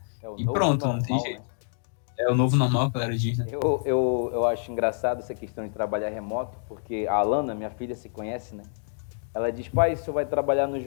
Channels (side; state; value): right; silent; digital silence